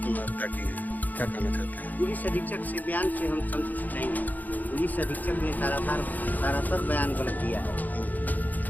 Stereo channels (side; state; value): right; late; 0.082 ms